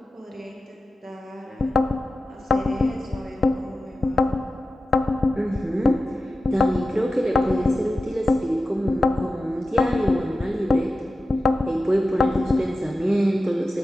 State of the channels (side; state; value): both; normal; correlation 0.93